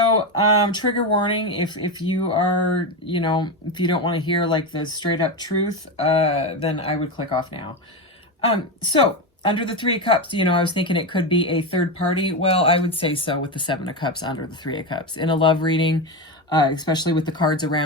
trigger warning, if you are, if you don't want to hear like the straight up truth, then I would click off now. So under the Three of Cups, I was thinking it could be a third party. Well, I would say so with the Seven of Cups under the Three of Cups. In a love reading, especially with the cards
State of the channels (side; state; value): both; normal; correlation 0.15